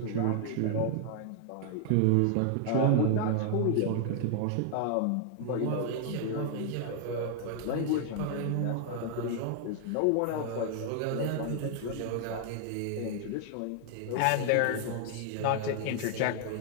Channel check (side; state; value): both; different; correlation 0.00